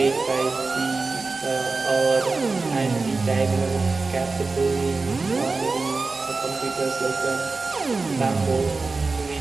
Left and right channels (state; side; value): quieter; left; 3.9 dB